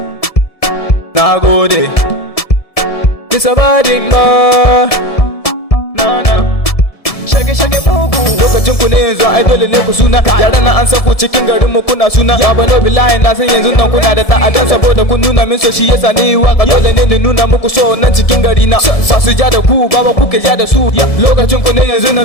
Nagode. It's a bad boy. No. Shage mugu. Lokacin ku ne yanzu ai dole ne ku suna. Yaran nan an san ku cikin garin mu kuna suna. Ya bano billahi na san yanzu nan kuna da ta'adan saboda kun nuna min so shi yasa ni waka dole ne ni nuna muku so nan cikin gari na. Ba su ja da ku baba kuke ja da su. Lokacin ku ne yanzu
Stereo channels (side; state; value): right; late; 1.7 ms